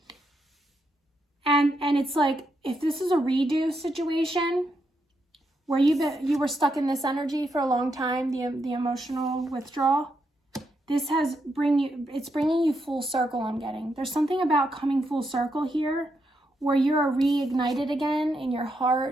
And it's like, if this is a redo situation where you were stuck in this energy for a long time, the emotional withdrawal, it's bringing you full circle. I'm getting there's something about coming full circle here, where you're reignited again in your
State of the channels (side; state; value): both; normal; correlation 0.81